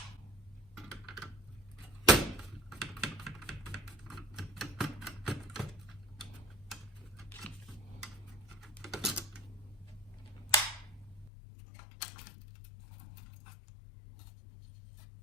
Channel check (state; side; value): drops out; right; at 11.3 s